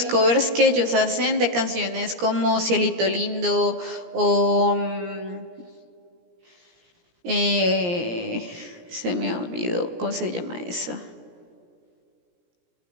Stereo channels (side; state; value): left; late; 17 ms